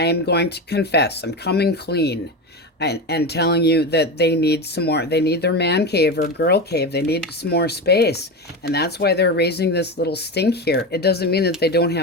am going to confess. I'm coming clean. And telling you that they need some more, they need their man cave or girl cave, they need some more space. And that's why they're raising this little stink here. It doesn't mean that they don't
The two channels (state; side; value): normal; both; correlation 0.20